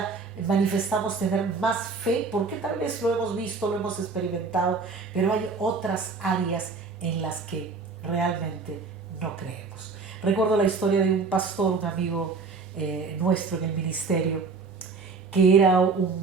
manifestamos tener más fe, porque tal vez lo hemos visto, lo hemos experimentado, pero hay otras áreas en las que realmente no creemos. Recuerdo la historia de un pastor, un amigo nuestro en el ministerio, que era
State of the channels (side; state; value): left; quieter; 4.6 dB